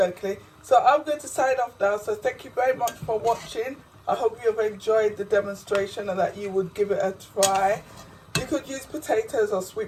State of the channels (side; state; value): both; identical; correlation 1.00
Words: So I'm going to sign off now. So thank you very much for watching. I hope you have enjoyed the demonstration and that you would give it a try. You could use potatoes or